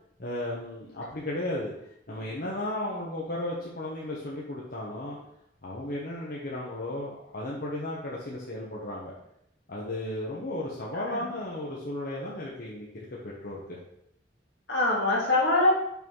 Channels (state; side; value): normal; both; correlation -0.07